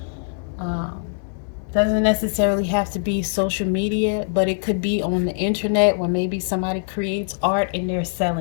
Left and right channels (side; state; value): right; silent; 64 dB below the other